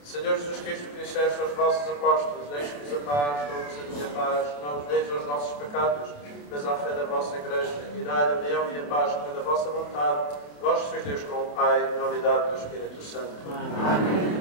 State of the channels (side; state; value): right; late; 28 ms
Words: Senhor Jesus Cristo, que disseste aos vossos apóstolos: deixe-nos a paz, dou-vos a minha paz, não os deis aos nossos pecados, mas à fé da vossa Igreja, e dai a união e a paz como é da vossa vontade, vós sois Deus com o Pai, na unidade do Espírito Santo.